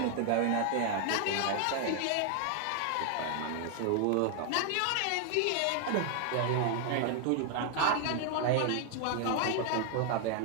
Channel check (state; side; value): different; both; correlation 0.00